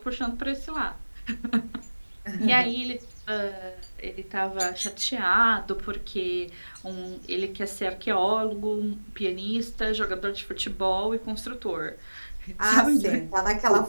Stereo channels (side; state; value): both; inverted; correlation -1.00